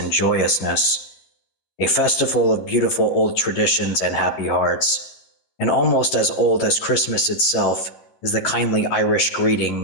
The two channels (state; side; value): late; right; 11 ms